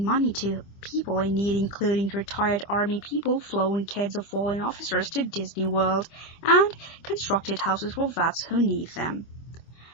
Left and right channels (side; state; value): right; late; 25 ms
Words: money to people in need, including retired Army people, flown kids of fallen officers to Disney World, and constructed houses for vets who need them.